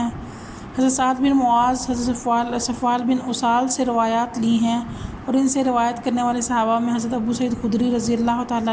حضرت سعد بن معاذ، حضرت صفوان بن اسال سے روایات لی ہیں، اور ان سے روایت کرنے والے صحابہ میں حضرت ابو سعید خدری رضی اللہ تعالیٰ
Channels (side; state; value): both; identical; correlation 1.00